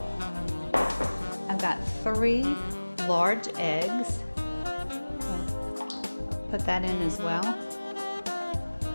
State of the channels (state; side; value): inverted; both; correlation -1.00